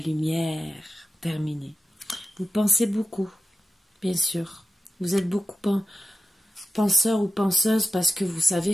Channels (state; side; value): normal; both; correlation 0.92